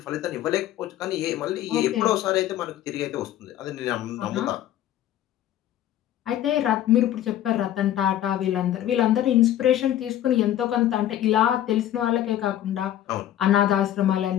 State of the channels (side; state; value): right; quieter; 12.0 dB